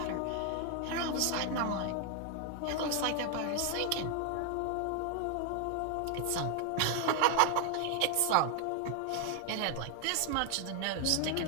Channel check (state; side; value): different; both; correlation 0.00